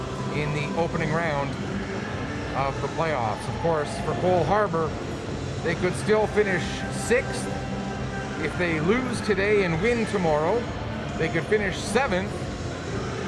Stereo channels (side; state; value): both; identical; correlation 1.00